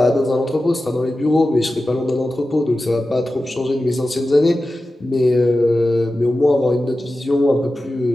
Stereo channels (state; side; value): normal; both; correlation 0.94